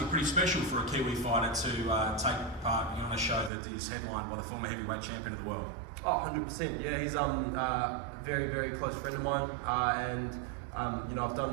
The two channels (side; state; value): left; drops out; at 3.5 s